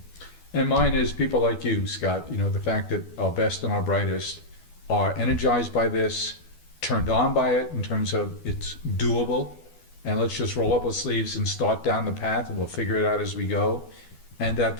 And mine is people like you, Scott, you know, the fact that our best and our brightest are energized by this, turned on by it in terms of it's doable, and let's just roll up our sleeves and start down the path, and we'll figure it out as we go. And that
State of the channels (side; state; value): right; late; 12 ms